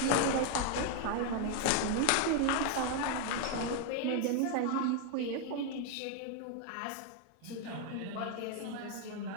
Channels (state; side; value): different; both; correlation 0.01